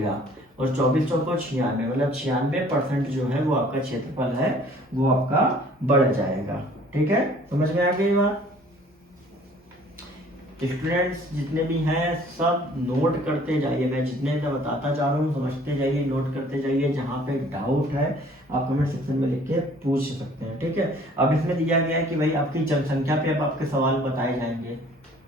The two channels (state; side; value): normal; both; correlation 0.54